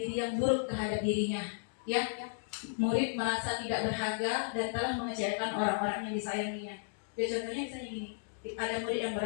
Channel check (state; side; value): silent; right; digital silence